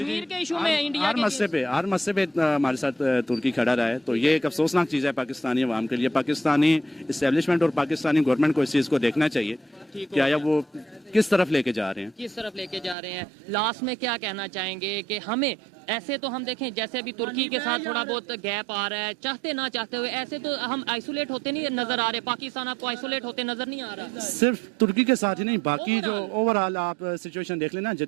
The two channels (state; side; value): drops out; left; at 13.0 s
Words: के इशू में, इंडिया हर के मसले पे हमारे साथ तुर्की खड़ा रहा है, तो ये एक अफसोसनाक चीज़ है पाकिस्तानी अवाम के लिए। पाकिस्तानी इस्टेब्लिशमेंट और पाकिस्तानी गवर्नमेंट को इस चीज़ को देखना चाहिए कि आया वो किस तरफ लेके जा रहे हैं, किस तरफ लेके जा रहे हैं। लास्ट में क्या कहना चाहेंगे कि हमें ऐसे तो हम देखें जैसे अभी तुर्की के साथ थोड़ा बहुत गैप आ रहा है, चाहते ना चाहते हुए ऐसे तो हम आइसोलेट होते नहीं नजर आ रहे, पाकिस्तान आपको आइसोलेट होते नजर नहीं आ रहा? सिर्फ तुर्की के साथ ही नहीं, बाकी जो ओवरऑल आप सिचुएशन देख लेना,